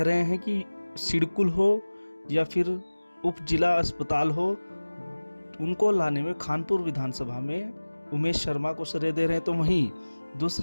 रहे हैं कि सिडकुल हो या फिर उप जिला अस्पताल हो, उनको लाने में खानपुर विधानसभा में उमेश शर्मा को श्रेय दे रहे हैं। तो वहीं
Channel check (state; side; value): inverted; both; correlation -1.00